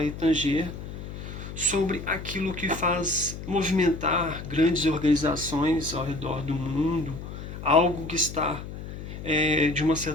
tanger sobre aquilo que faz movimentar grandes organizações ao redor do mundo, algo que está de uma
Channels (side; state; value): left; noise; hum, 10 dB below the sound